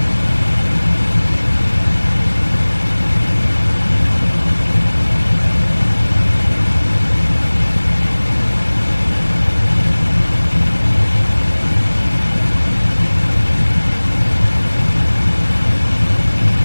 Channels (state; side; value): inverted; both; correlation -1.00